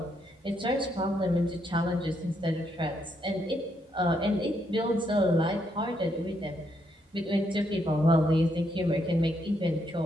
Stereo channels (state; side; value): normal; both; correlation 0.76